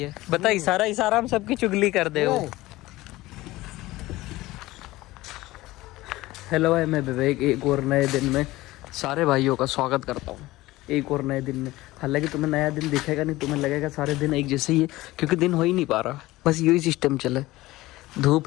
बता इशारा हम सबकी चुगली कर दे हो। हेलो भाई, मैं विवेक एक और नए दिन में सारे भाइयों का स्वागत करता हूँ। एक और नए दिन में, हालांकि तुम्हें नया दिन दिखेगा नहीं, तुम्हें लगेगा सारे दिन एक जैसे ही है, क्योंकि दिन हो ही नहीं पा रहा। बस यही सिस्टम चले,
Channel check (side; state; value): right; quieter; 18.3 dB